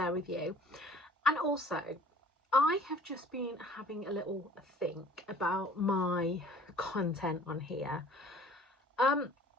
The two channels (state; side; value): normal; both; correlation 0.51